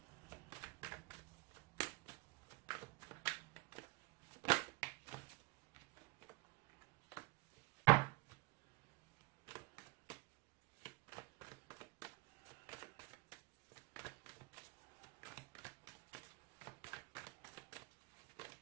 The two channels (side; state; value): left; quieter; 21.7 dB